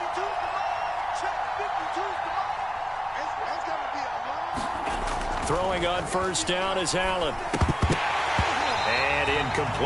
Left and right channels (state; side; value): identical; both; correlation 1.00